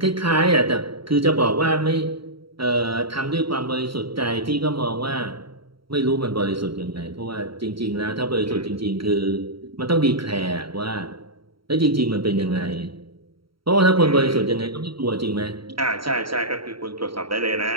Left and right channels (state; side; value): late; left; 0.74 ms